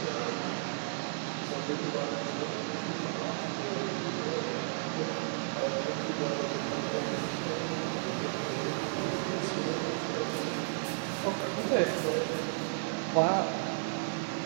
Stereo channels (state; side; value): silent; left; digital silence